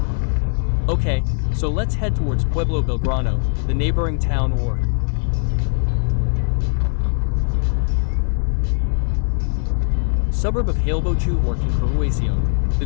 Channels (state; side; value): silent; right; digital silence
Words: Okay, so let's head towards Pueblo Belgrano, the neighboring town or suburb of Gualeguaychú or Concurruación. The